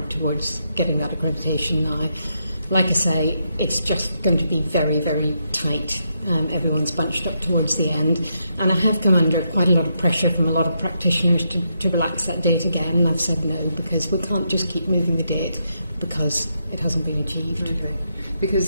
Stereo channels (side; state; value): both; inverted; correlation -0.80